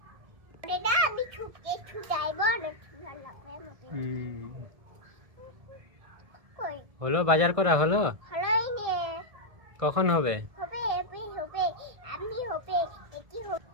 হলো বাজার করা হলো? কখন হবে?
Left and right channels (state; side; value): late; left; 1.7 ms